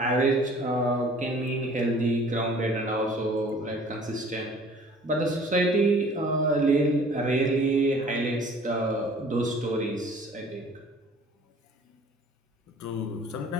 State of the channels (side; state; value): both; normal; correlation 0.51